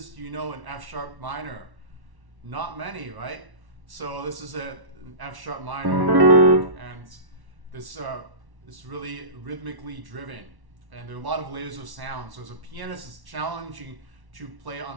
do you know in F sharp minor? Not many, right? So this is an F sharp minor, and this is really rhythmically driven, and there are a lot of layers of sound. So as a pianist, it's challenging to play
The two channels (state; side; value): late; left; 1.1 ms